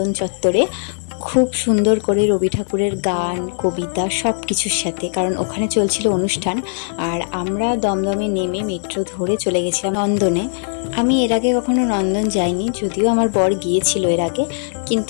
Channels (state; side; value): silent; right; digital silence